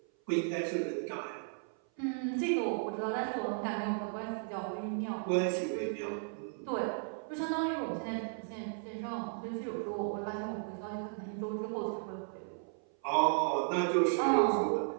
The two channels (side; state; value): left; silent; 54 dB below the other